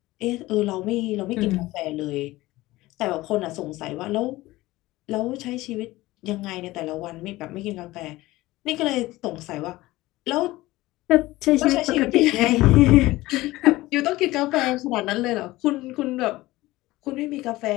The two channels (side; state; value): right; quieter; 18.5 dB